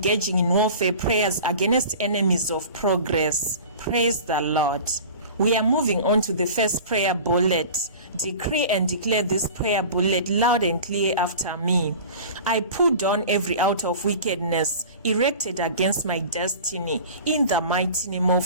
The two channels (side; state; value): both; inverted; correlation -0.39